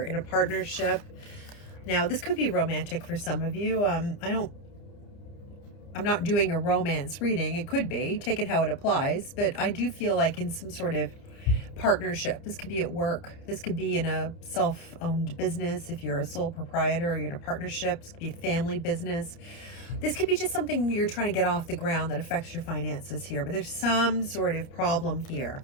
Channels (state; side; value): late; right; 30 ms